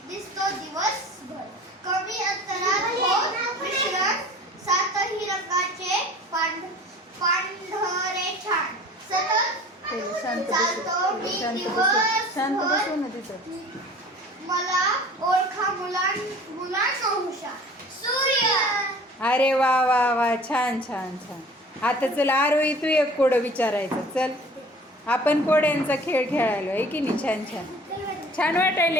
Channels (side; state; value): both; normal; correlation 0.46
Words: दिसतो दिवसभर. कमी अंतरात होत मिश्रण, सातही रंगाचे पांढरे छान. सतत चालतो मी दिवसभर, मला ओळखा मुलांना हुशार. सूर्य. अरे वा वा वा, छान छान छान. आता चल आरोही, तू एक कोडं विचारायचं. चल आपण कोड्यांचा खेळ खेळायलो आहे की नाही. छान छान छान